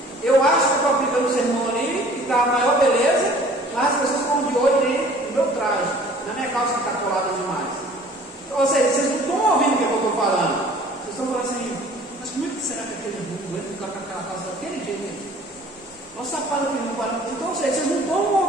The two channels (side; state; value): both; normal; correlation 0.51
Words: Eu acho que estou aplicando o sermão ali, que está a maior beleza, mas as pessoas estão de olho ali no meu traje, na minha calça que está colada demais. Ou seja, vocês não estão ouvindo o que eu estou falando, vocês estão falando assim, mas como é que será que aquele mundo vai ficar com aquela calça daquele jeito? Olha o sapato que não para. Então, ou seja, vocês não